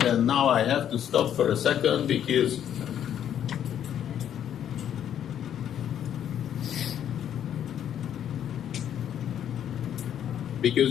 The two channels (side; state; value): right; quieter; 9.9 dB